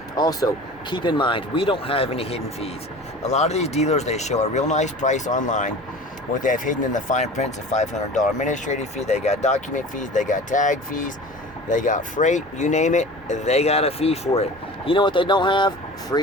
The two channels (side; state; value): both; normal; correlation 0.39